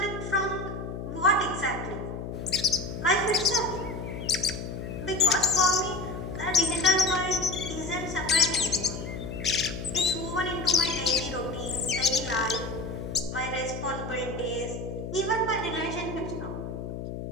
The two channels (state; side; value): noise; left; hum, 7 dB below the sound